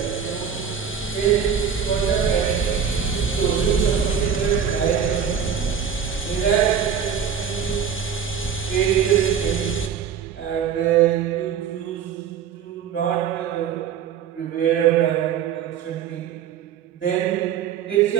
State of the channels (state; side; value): quieter; left; 7.8 dB